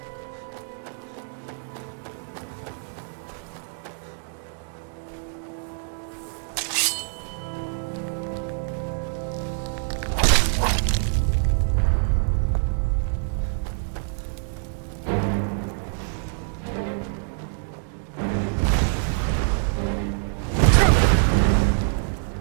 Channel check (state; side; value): silent; left; 61 dB below the other